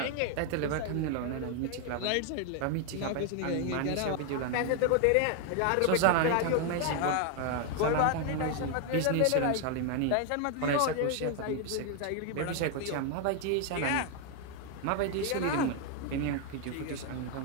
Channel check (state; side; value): different; both; correlation 0.01